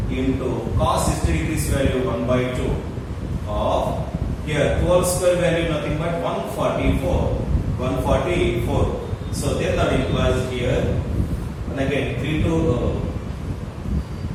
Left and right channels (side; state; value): both; identical; correlation 1.00